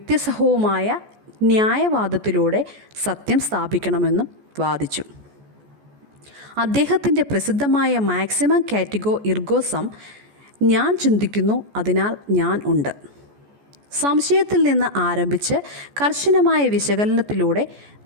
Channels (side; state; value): left; late; 14 ms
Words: ന്യായവാദത്തിലൂടെ സത്യം സ്ഥാപിക്കണമെന്നും വാദിച്ചു. അദ്ദേഹത്തിൻ്റെ പ്രസിദ്ധമായ മാക്സിമം കാറ്റഗോ ഇർഗോ സം, ഞാൻ ചിന്തിക്കുന്നു അതിനാൽ ഞാൻ ഉണ്ട്, സംശയത്തിൽ നിന്ന് ആരംഭിച്ച് കർശനമായ വിശകലനത്തിലൂടെ